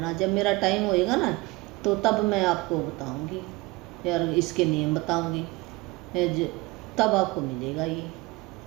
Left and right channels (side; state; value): left; quieter; 22.8 dB